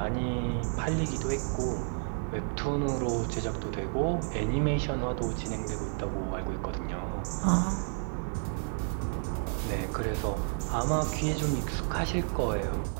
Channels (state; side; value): silent; left; 57 dB below the other